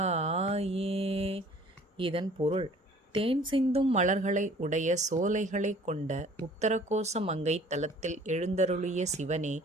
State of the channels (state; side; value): normal; both; correlation 0.52